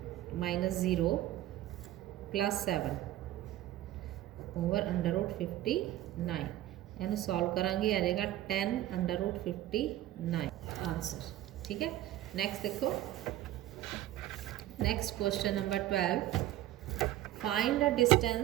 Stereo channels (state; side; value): quieter; left; 14.3 dB